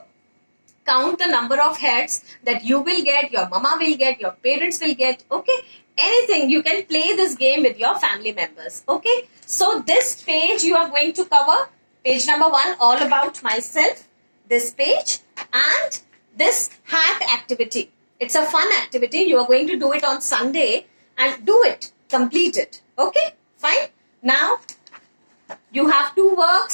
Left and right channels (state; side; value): inverted; both; correlation -1.00